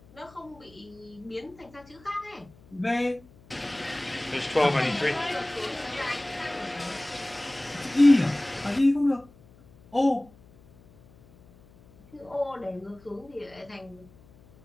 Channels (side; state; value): left; noise; hum, 25 dB below the sound